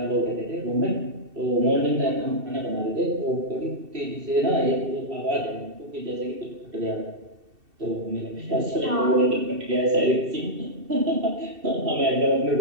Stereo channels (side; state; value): left; late; 2.7 ms